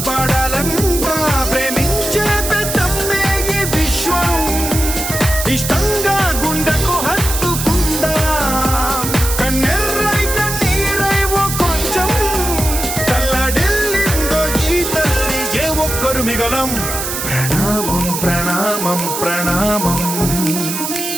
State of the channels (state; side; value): noise; right; hiss, 4 dB below the sound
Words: ప్రేమించే పెద్దమ్మే ఈ విశ్వం ఇష్టంగా గుండెకు హత్తుకుందా కన్నెర్రై కన్నీరై ఓ కొంచెం తల్లడిల్లిందో ఈ తల్లి ఏ ఒక్కరు మిగలం ప్రణామం ప్రణామం ప్రణామం